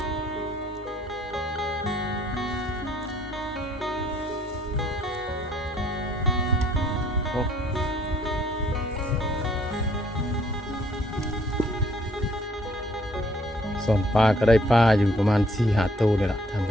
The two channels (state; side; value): normal; both; correlation 0.63